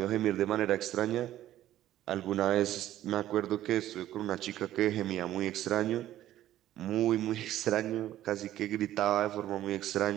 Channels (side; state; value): left; quieter; 13.2 dB